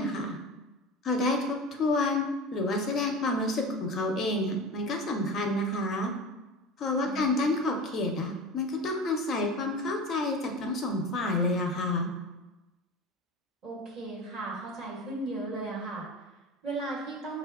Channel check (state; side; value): normal; both; correlation 0.31